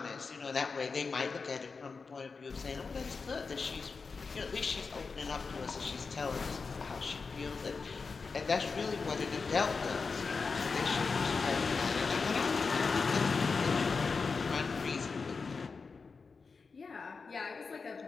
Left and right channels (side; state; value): right; quieter; 4.7 dB